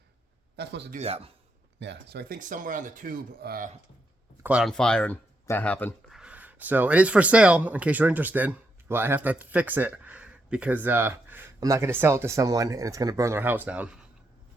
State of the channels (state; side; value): normal; both; correlation 0.81